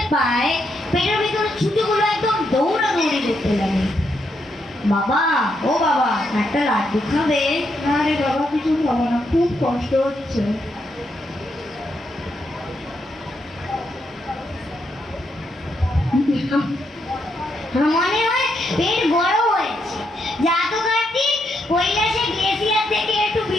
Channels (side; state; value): both; normal; correlation 0.79